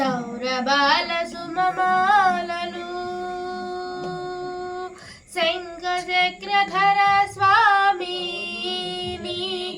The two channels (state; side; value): identical; both; correlation 1.00